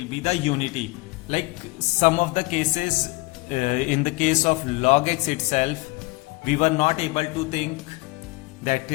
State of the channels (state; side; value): quieter; right; 23.7 dB